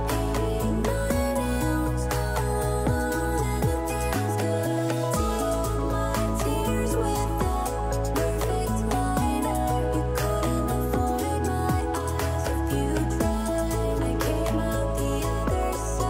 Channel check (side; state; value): both; identical; correlation 1.00